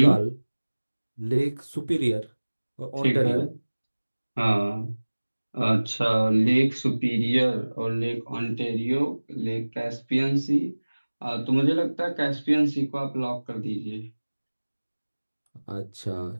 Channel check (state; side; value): inverted; both; correlation -1.00